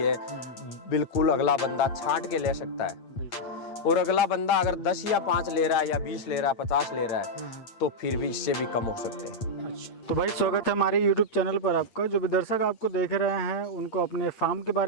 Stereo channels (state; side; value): late; right; 8.7 ms